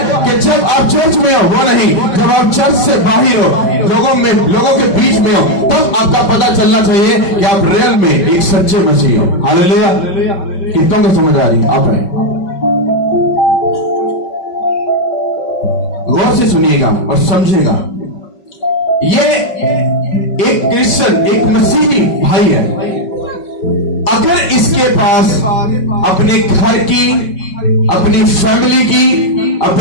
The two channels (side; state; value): right; late; 5.3 ms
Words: कि जब आप चर्च में हो, वो नहीं जब आप चर्च से बाहर हो, लोगों के बीच में हो, तब आपका पता चलना चाहिए कि आप रियल में एक सच्चे मसीह हो। हालेलुया! कितनों को समझ आ रही? आप आए गौर से सुनिएगा और समझिएगा। ये एक क्रिश्चियन, एक मसीही भाई है, अगर इसके पास अपने घर की, अपनी फैमिली की,